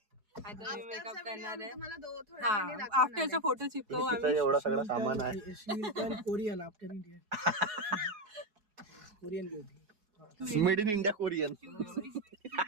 आता मी मेकअप करणार आहे. तुम्हाला थोड्या हा, वेळाने दाखवणार आफ्टरचा फोटो चिपकवू तिचा आम्ही. एवढा सगळा सामान आहे. Korean after India. Korean beauty. Made in India Korean.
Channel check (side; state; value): left; late; 4.7 ms